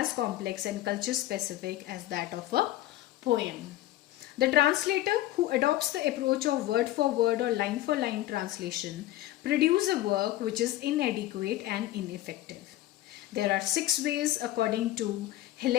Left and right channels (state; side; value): quieter; right; 15.2 dB